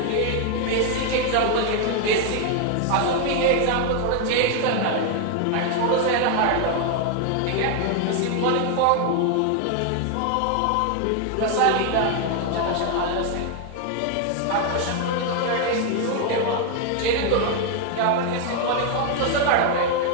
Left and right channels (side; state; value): both; different; correlation 0.00